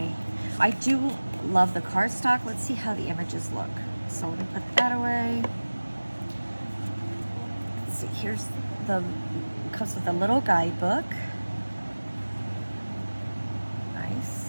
I do love the cardstock. Let's see how the images look. So let me put that away. Let's see, here's comes with a little guidebook.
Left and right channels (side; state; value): both; inverted; correlation -1.00